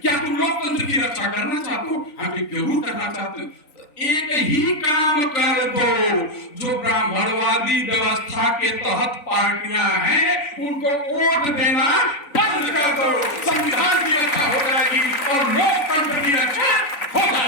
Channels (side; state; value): right; late; 3.9 ms